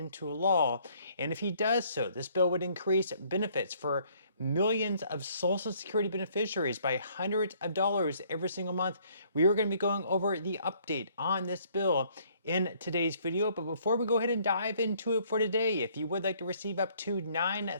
law. And if he does so, this bill would increase benefits for millions of Social Security beneficiaries by hundreds of dollars every single month. We are going to be going over the update on this bill in today's video. But before we go ahead and dive into it for today, if you would like to receive up to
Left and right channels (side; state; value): both; inverted; correlation -0.63